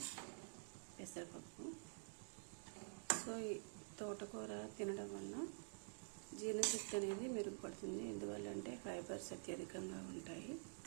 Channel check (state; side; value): silent; left; digital silence